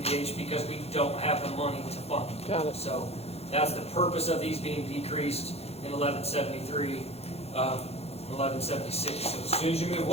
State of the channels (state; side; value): late; right; 0.30 ms